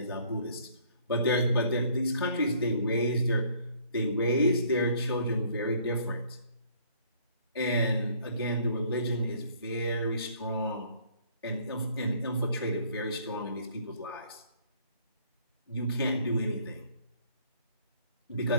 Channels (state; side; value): inverted; both; correlation -0.60